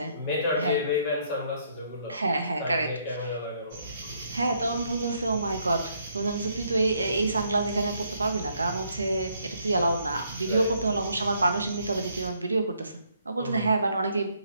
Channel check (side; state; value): both; inverted; correlation -0.71